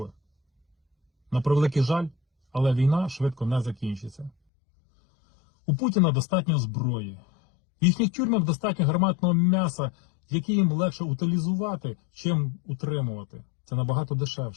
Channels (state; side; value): drops out; right; at 4.3 s